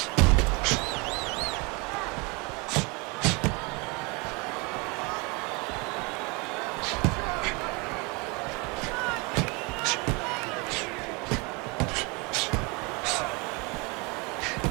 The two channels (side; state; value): left; quieter; 28.7 dB